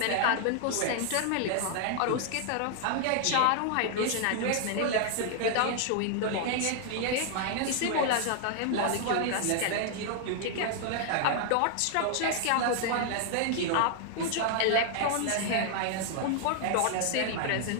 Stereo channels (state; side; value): different; both; correlation 0.00